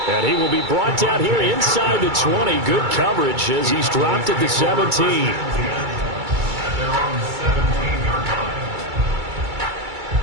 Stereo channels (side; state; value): left; late; 2.3 ms